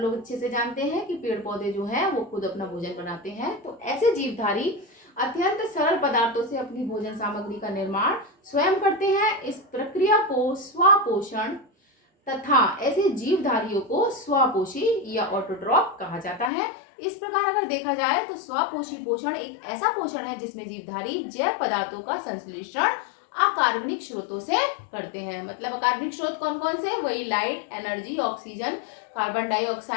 अच्छे से जानते हैं कि पेड़ पौधे जो है वो खुद अपना भोजन बनाते हैं। तो ऐसे जीवधारी अत्यंत सरल पदार्थों से अपनी भोजन सामग्री का निर्माण स्वयं करते हैं। इस प्रक्रिया को स्वपोषण तथा ऐसे जीवधारियों को स्वपोषी या ऑटोट्रॉप कहा जाता है। इस प्रकार अगर देखा जाए तो स्वपोषी पोषण एक ऐसा पोषण है जिसमें जीवधारी जैव पदार्थों का संश्लेषण अकार्बनिक स्रोतों से करते हैं। मतलब अकार्बनिक स्रोत कौन कौन से, वही light, energy, oxygen, carbon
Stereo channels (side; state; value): right; drops out; at 16.5 s